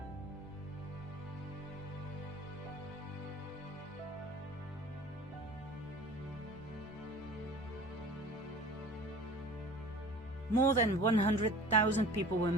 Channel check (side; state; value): both; normal; correlation 0.42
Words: More than 100,000 people were